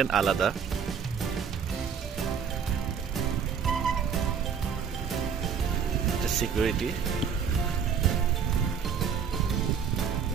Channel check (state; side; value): quieter; left; 6.9 dB